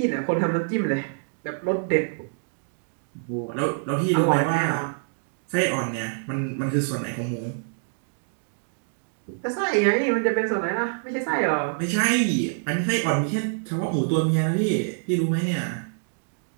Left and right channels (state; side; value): silent; left; digital silence